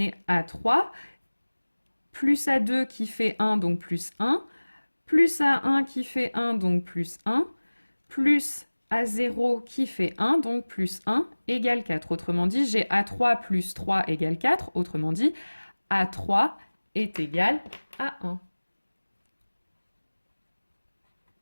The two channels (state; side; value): inverted; both; correlation -1.00